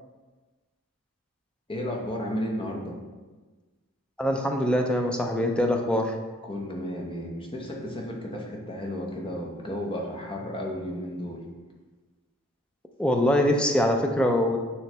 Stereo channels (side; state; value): both; normal; correlation 0.65